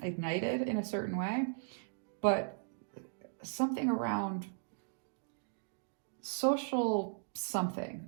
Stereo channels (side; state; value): left; silent; digital silence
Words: ignited in a certain way, but something around social something.